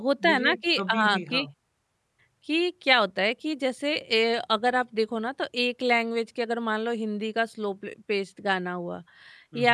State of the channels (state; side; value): identical; both; correlation 1.00